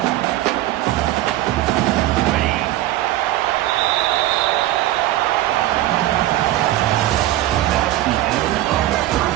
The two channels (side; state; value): left; quieter; 15.1 dB